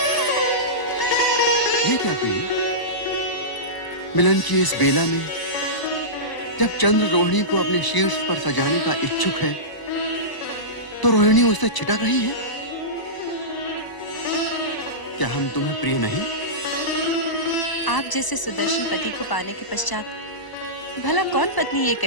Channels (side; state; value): right; late; 1.0 ms